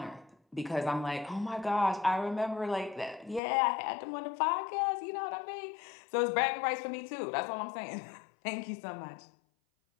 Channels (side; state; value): right; drops out; at 3.4 s